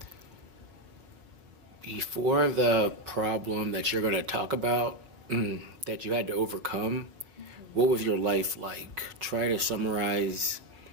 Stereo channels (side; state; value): left; late; 5.8 ms